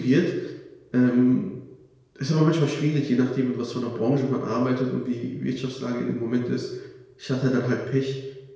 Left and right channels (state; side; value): identical; both; correlation 1.00